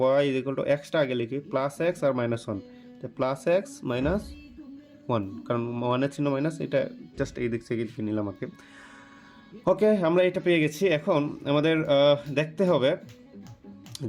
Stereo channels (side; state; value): both; identical; correlation 1.00